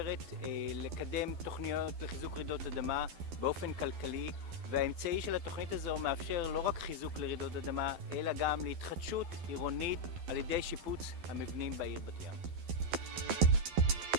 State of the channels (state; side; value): late; left; 12 ms